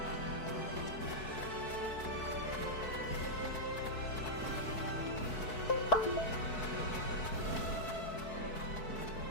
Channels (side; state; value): right; late; 4.6 ms